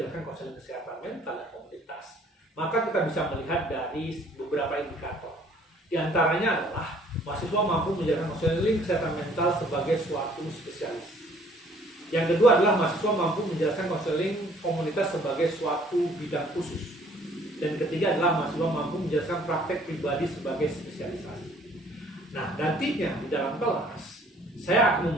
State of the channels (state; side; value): normal; both; correlation 0.58